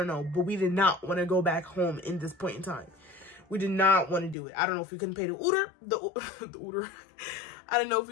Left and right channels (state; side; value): drops out; right; at 4.4 s